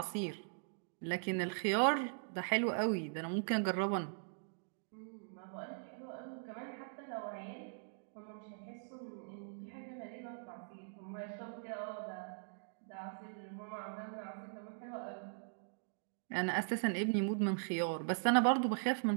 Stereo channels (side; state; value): left; silent; digital silence